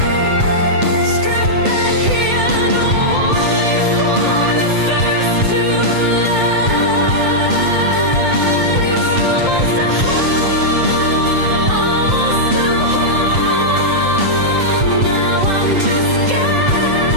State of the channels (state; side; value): late; left; 7.8 ms